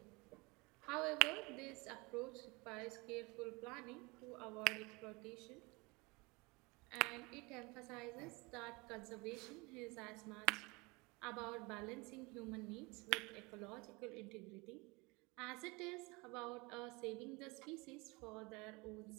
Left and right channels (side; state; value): left; quieter; 26.1 dB